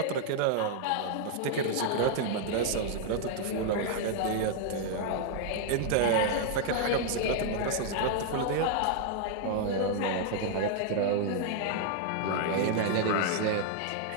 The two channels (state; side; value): different; both; correlation -0.01